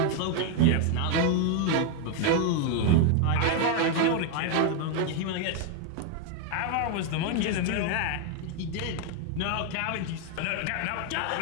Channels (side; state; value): both; different; correlation 0.01